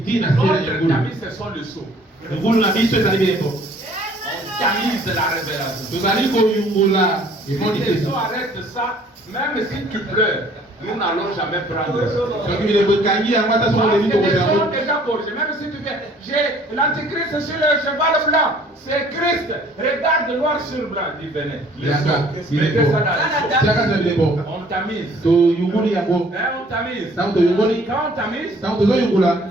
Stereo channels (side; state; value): both; normal; correlation 0.56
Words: na se na Notre yungulu. tamis, ce sont le seau. Yungulu na biso ezali bilembo. On tamise la révélation. Tozali koyungula emoni Si les te. eaux arrêtent ça, même si tu pleures, nous n'allons jamais prendre. Soki bilembo ekangi yango ata soki Parce oleli que les kokoza gens yango. ont déjà corrigé. Même si tu viens, j'ai l'antichrist sur le cheval blanc. C'est Christ. Regarde noir sur blanc. Il venait. Les Yaka, eaux. il est Mettez beau. ça dans les eaux. Tiaka za bilembo. On tamise. Toyunguli yango. On tamise. Ntango toyungoli, Quand on tamise, ntango tozoyungula,